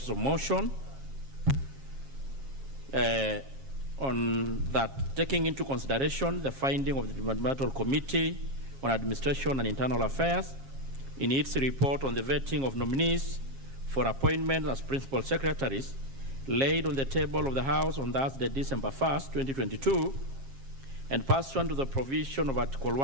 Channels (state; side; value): late; left; 7.4 ms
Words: of motion on that, taking into consideration the finding of the Departmental Committee on Administration and Internal Affairs in its report on the vetting of nominees for appointment as Principal Secretaries, laid on the table of the House on Thursday, December 1st, 2022, and pursuant to the provision of Article